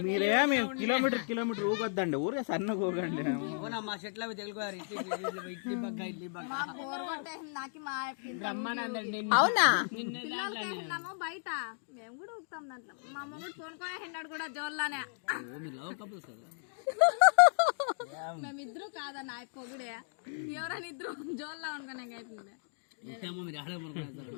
మీరేమి కిలోమీటర్ ఊగొద్దండి, ఊరే సన్నగా ఊగండి. మా చెట్లు అవి తెలుగువారు ఇడ్లీ పక్క అవునా? బయట మేము కూడా ఊపుతాం దాంట్లో. మా మొగుడు కొనుక్కొని హెండాడు కూడా జోల్లానే. మేమిద్దరు కాదన్న పొగుడే ఎవరైనా ఇద్దరు జోల్లా అనుకునే అవుతుంది. మీరు ఆడే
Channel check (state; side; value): silent; right; digital silence